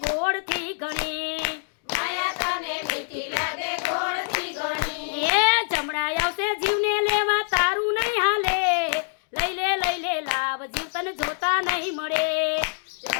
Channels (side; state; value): right; silent; digital silence